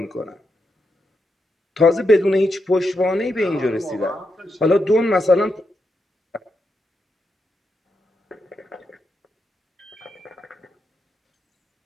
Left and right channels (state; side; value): normal; both; correlation 0.84